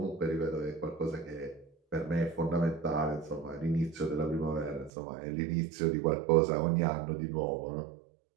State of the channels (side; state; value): left; drops out; at 4.9 s